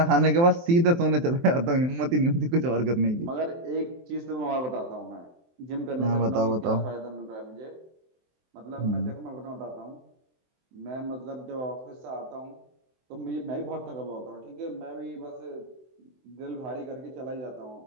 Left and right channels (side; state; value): left; late; 23 ms